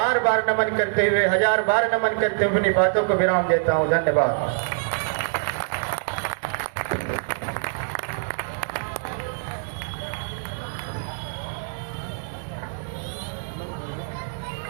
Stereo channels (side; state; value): left; silent; digital silence